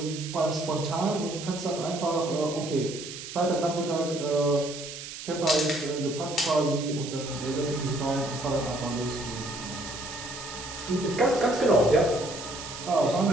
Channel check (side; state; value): right; noise; hiss, 10 dB below the sound